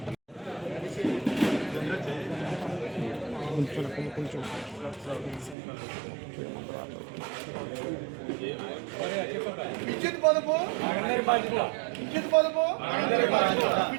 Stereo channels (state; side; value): drops out; left; at 5.6 s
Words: విద్యుత్ పొదుపు విద్యుత్ పొదుపు